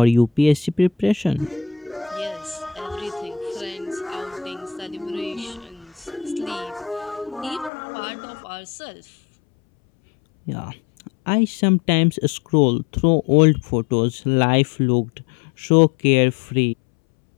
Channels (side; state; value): right; drops out; at 7.7 s